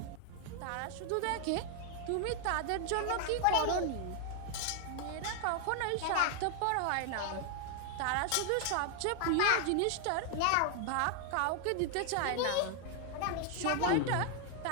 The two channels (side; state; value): both; different; correlation 0.00